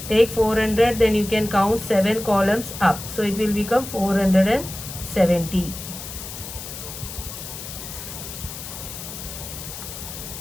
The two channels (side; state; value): left; noise; hiss, 10 dB below the sound